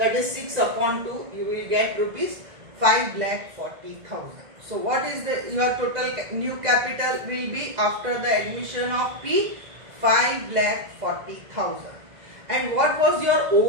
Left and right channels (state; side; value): late; left; 2.0 ms